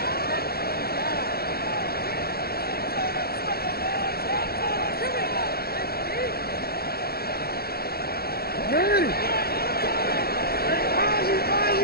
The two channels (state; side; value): late; right; 0.45 ms